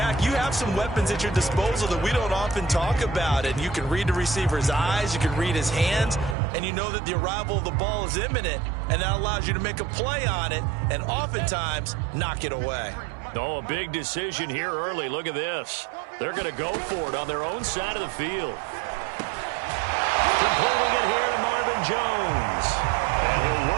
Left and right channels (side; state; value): left; drops out; at 6.4 s